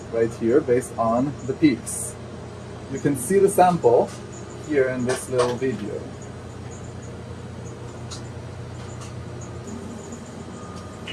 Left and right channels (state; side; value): identical; both; correlation 1.00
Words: right here based on the peaks. You can see the sample here in this little video.